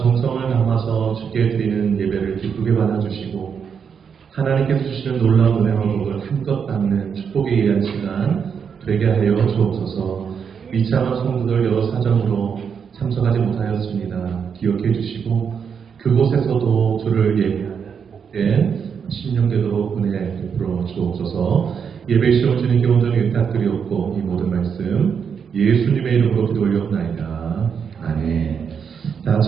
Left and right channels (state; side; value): quieter; left; 6.8 dB